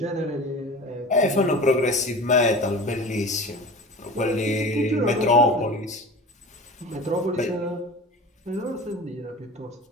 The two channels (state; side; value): normal; both; correlation 0.36